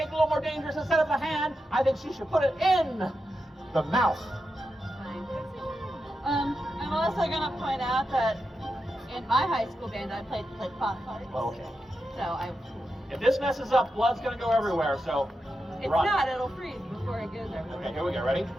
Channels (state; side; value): normal; both; correlation 0.88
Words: a little more dangerous. Instead of the hand, I think she should put it in the mouth. I'm also going to point out that in my high school band, I played pop parties. Okay. So If this messes up, blood's going to go everywhere. So it's run. not, it'll freeze before it goes everywhere. Okay, here we go. Ready?